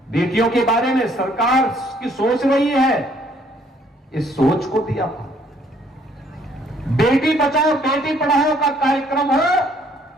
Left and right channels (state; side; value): normal; both; correlation 0.64